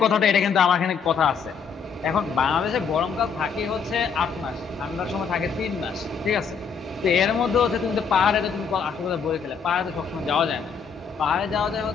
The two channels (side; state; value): right; quieter; 6.1 dB